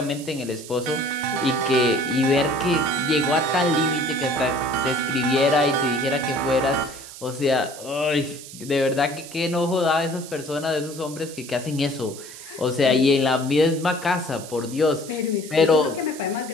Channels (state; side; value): noise; right; hiss, 15 dB below the sound